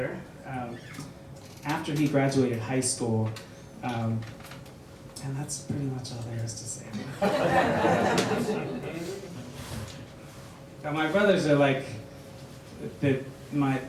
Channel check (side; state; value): both; identical; correlation 1.00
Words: after he graduated high school. And that's pretty much all there is to say. My brothers are like my